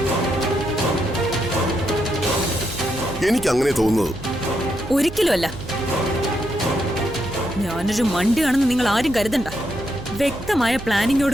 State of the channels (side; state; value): right; noise; hum, 13 dB below the sound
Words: എനിക്ക് അങ്ങനെ തോന്നുന്നത്. ഒരിക്കലുമല്ല. ഞാനൊരു മണ്ടിയാണെന്ന് നിങ്ങൾ ആരും കരുതണ്ട. വ്യക്തമായ